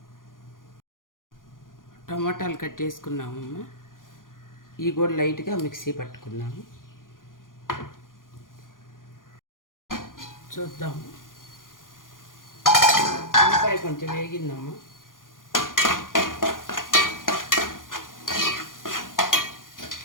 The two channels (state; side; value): late; right; 0.90 ms